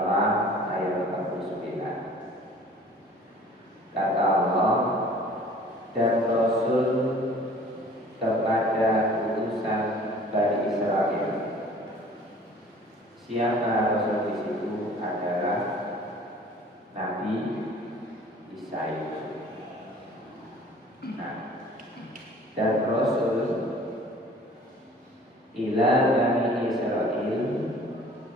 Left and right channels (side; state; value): both; normal; correlation 0.49